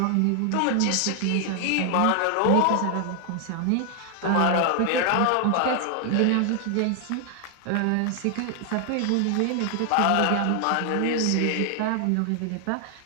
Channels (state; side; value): different; both; correlation 0.00